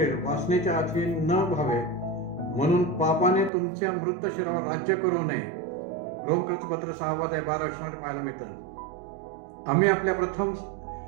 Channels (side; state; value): left; drops out; at 3.5 s